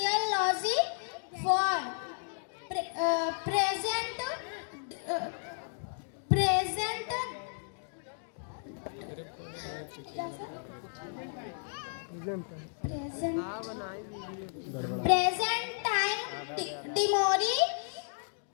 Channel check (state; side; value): silent; right; digital silence